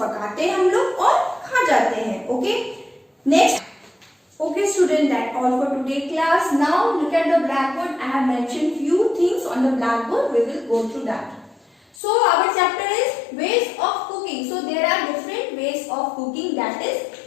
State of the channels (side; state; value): right; drops out; at 12.0 s